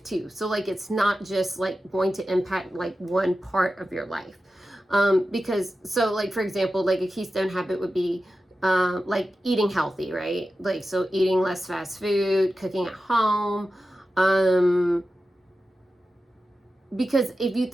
too. So like it's not just like going to impact like one part of your life. Because so like for example, like a keystone habit would be like eating healthy, right? Like so eating less fast food, cooking at home, because if you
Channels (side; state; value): both; normal; correlation 0.93